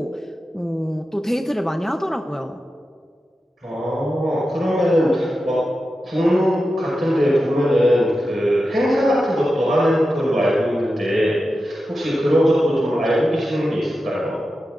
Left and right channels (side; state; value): both; normal; correlation 0.91